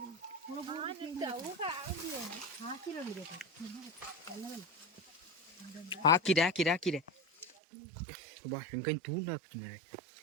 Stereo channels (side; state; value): left; drops out; at 7.6 s